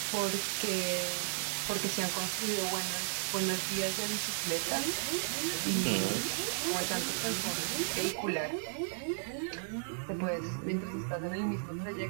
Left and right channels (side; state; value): left; silent; 55 dB below the other